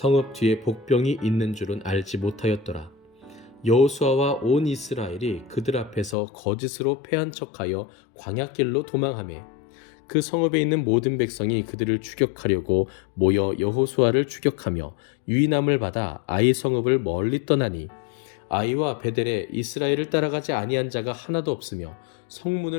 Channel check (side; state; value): right; drops out; at 6.2 s